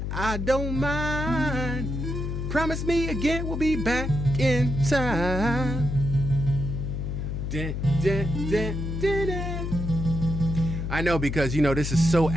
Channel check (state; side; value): noise; left; hum, 3 dB below the sound